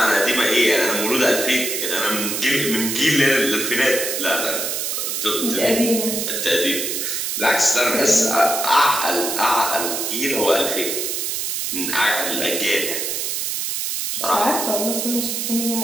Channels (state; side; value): noise; right; hiss, 2 dB below the sound